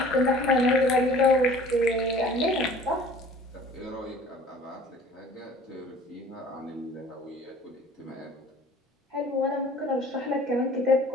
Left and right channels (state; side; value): normal; both; correlation 0.49